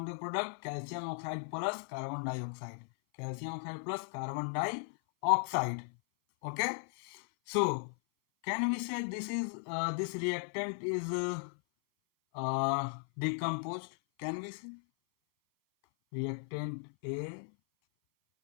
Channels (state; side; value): silent; right; 53 dB below the other